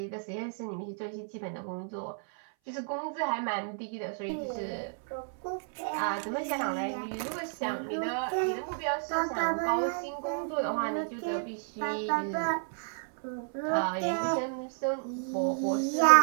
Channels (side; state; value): left; silent; 57 dB below the other